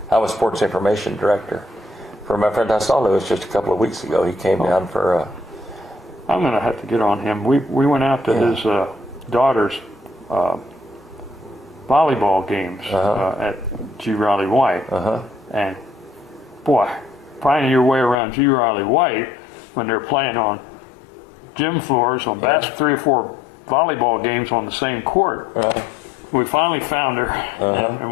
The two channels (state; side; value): drops out; right; at 18.2 s